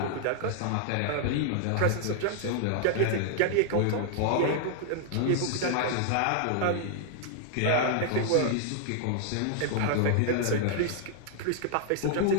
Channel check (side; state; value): both; different; correlation -0.01